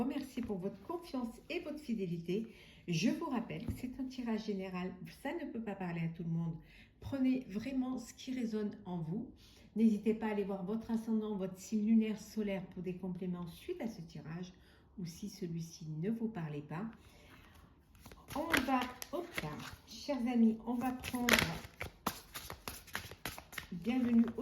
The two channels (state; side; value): identical; both; correlation 1.00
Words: pour votre confiance et votre fidélité. Je vous rappelle que c'est un tirage général, ça ne peut pas parler à tout le monde. Prenez vraiment ce qui résonne en vous. N'hésitez pas à aller voir votre ascendant, votre signe lunaire solaire pour des compléments suite à ce tirage ou si celui-ci ne vous parlait pas. On va, hop là, chers amis, on va prendre bienvenue